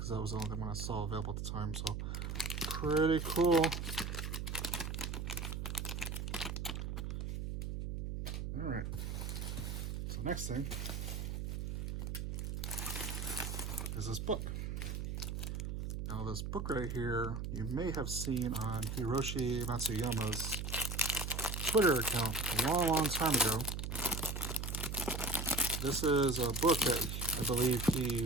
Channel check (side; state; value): right; noise; hum, 3 dB below the sound